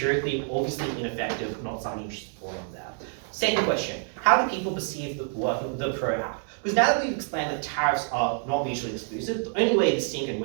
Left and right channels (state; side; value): silent; left; 55 dB below the other